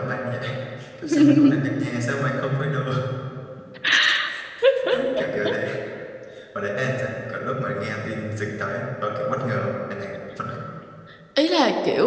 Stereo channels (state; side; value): identical; both; correlation 1.00